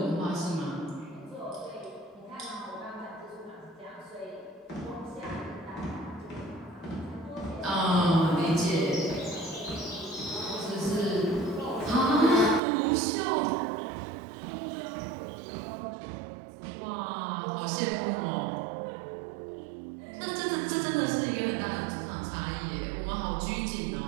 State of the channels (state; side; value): drops out; left; at 12.6 s